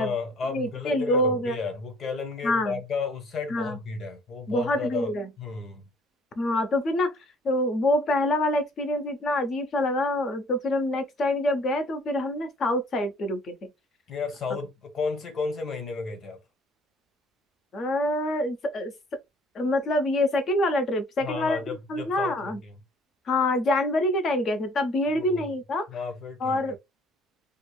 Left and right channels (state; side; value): normal; both; correlation 0.56